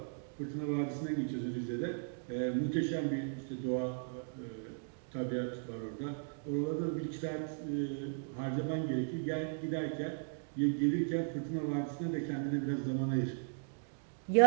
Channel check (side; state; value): left; silent; digital silence